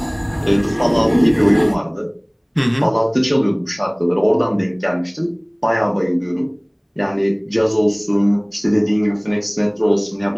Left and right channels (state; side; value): identical; both; correlation 1.00